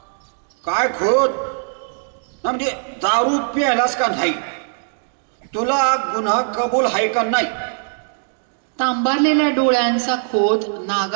काय खोत ना, म्हणजे दारू प्यायलास का नाही? तुला गुन्हा कबूल आहे का नाही? तांबारलेल्या डोळ्यांचा खोत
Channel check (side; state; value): left; silent; digital silence